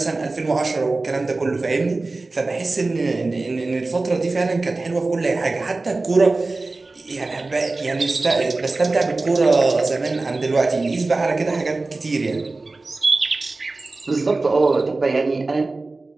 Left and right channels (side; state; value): left; quieter; 3.4 dB